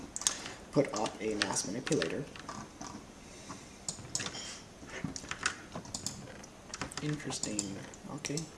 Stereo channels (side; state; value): both; identical; correlation 1.00